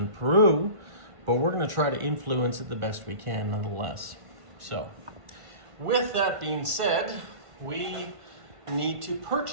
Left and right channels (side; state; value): left; late; 1.5 ms